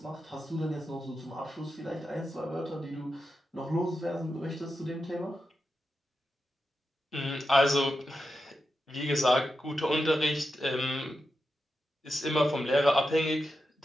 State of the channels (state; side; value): normal; both; correlation 0.89